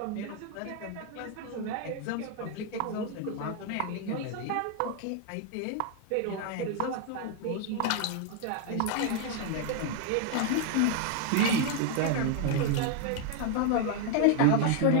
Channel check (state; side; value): different; both; correlation 0.00